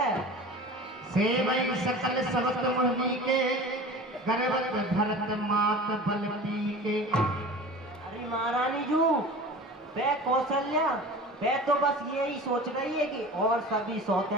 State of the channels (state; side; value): normal; both; correlation 0.37